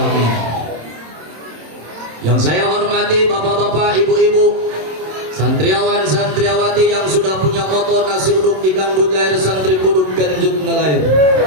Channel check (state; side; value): late; left; 27 ms